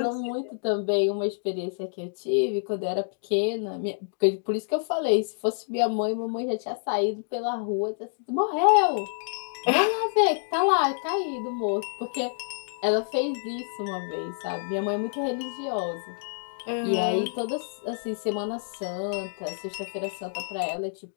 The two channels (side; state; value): right; silent; digital silence